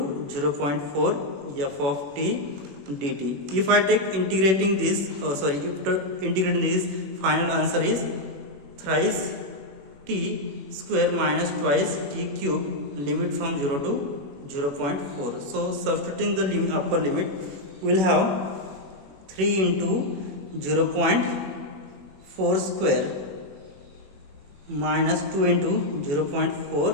0.4 f of t dt. If I take integrating this, after integrating this, final answer is thrice t square minus twice t cube, limit from 0 to 0.4. So substituting the upper limit, we will have 3 into 0.4 square minus 2 into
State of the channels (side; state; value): left; late; 21 ms